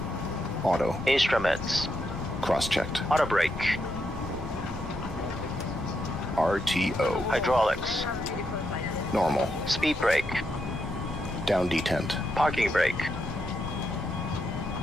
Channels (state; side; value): normal; both; correlation 0.81